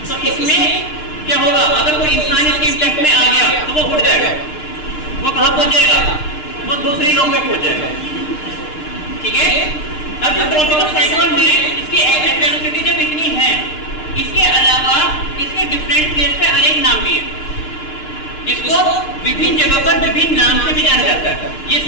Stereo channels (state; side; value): late; right; 6.6 ms